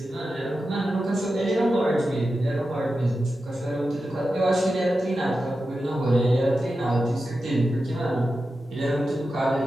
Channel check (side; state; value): both; normal; correlation 0.91